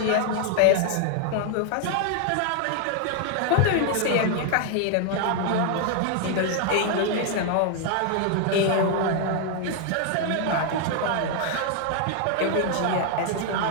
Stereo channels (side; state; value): both; different; correlation 0.00